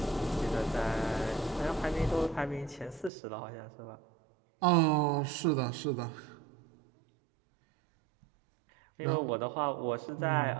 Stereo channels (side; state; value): left; drops out; at 3.1 s